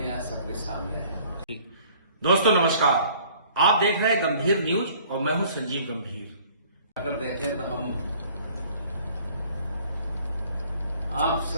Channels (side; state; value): both; inverted; correlation -0.54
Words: यहाँ सबके सामने है। दोस्तों नमस्कार, आप देख रहे हैं गंभीर न्यूज और मैं हूं संजीव गंभीर। अगर देखें तो हम आप